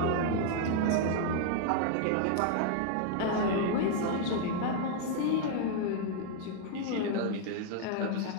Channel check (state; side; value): different; both; correlation 0.00